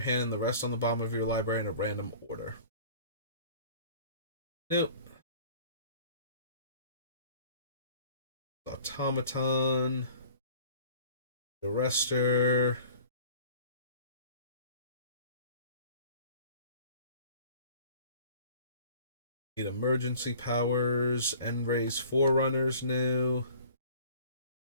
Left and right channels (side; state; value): both; inverted; correlation -0.49